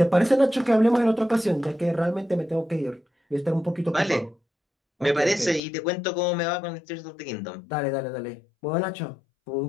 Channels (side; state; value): right; drops out; at 5.6 s